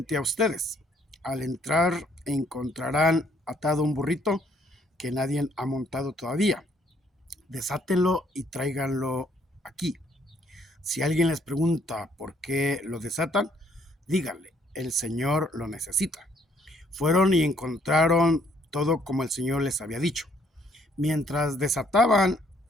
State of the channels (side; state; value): both; normal; correlation 0.66